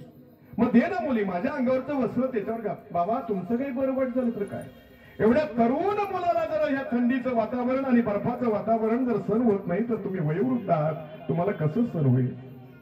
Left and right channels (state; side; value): identical; both; correlation 1.00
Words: मग दे ना मुली, माझ्या अंगावरचं वस्त्र त्याच्यावर घाल. बाबा तुमचं काही बरं वाईट झालं तर काय, एवढ्या तरुण मुलाला जर ह्या थंडीचं वातावरण आणि बर्फाचं वातावरण जर सण होत नाही तर तुम्ही वयोवृद्ध आहात, तुम्हाला कसं सण होईल?